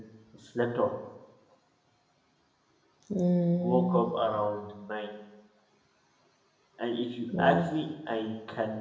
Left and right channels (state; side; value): identical; both; correlation 1.00